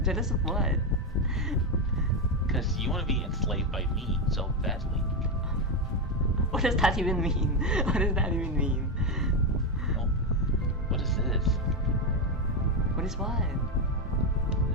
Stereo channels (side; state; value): both; normal; correlation 0.09